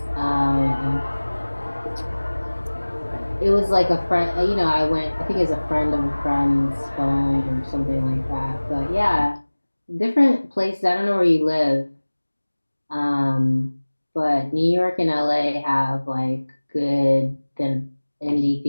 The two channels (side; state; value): both; inverted; correlation -1.00